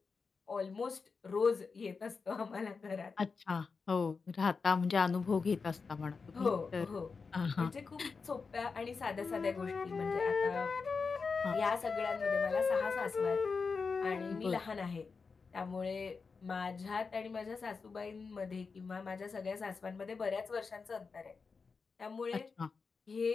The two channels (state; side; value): quieter; right; 4.9 dB